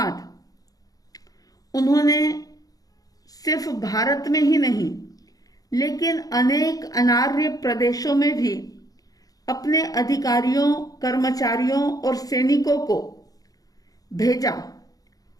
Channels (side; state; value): right; late; 0.18 ms